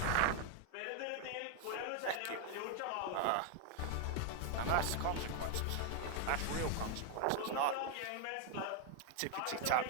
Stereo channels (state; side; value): different; both; correlation 0.01